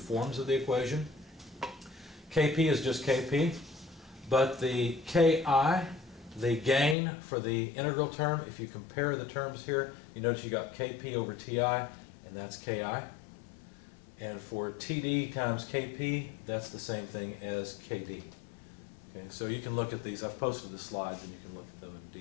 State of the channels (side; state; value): right; drops out; at 7.0 s